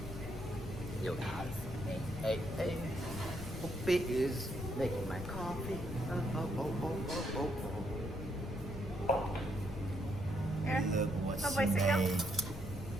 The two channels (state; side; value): noise; left; rumble, 8 dB below the sound